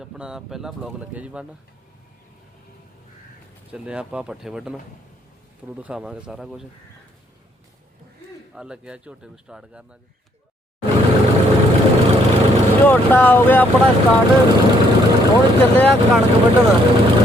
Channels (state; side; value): normal; both; correlation 0.68